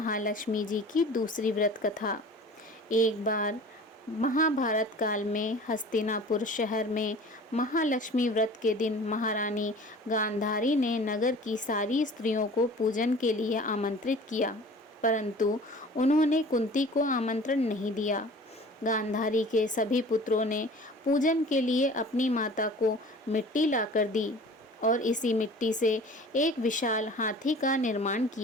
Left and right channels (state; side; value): normal; both; correlation 0.44